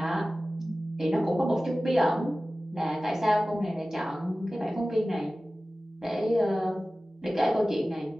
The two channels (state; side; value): normal; both; correlation 0.96